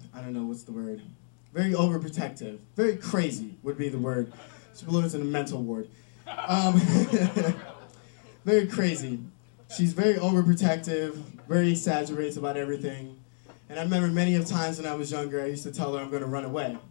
I don't know what's the word, very overprotective, very crazy would be the word. She belongs in a mental ward. Very crazy. She's very overprotective, very exaggerates about everything. And I remember many of times when I was younger, I used to tell her I'm going to run away.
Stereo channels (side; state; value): right; silent; 59 dB below the other